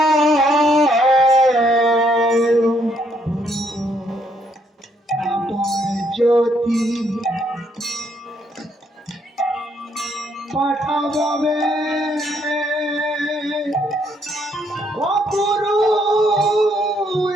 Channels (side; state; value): both; normal; correlation 0.71